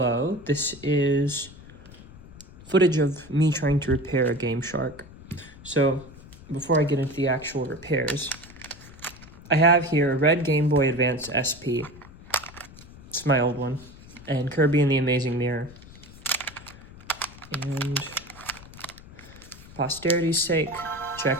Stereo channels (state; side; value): noise; left; rumble, 19 dB below the sound